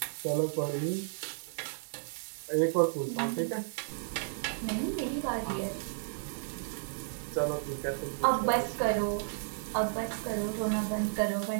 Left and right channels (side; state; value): left; silent; digital silence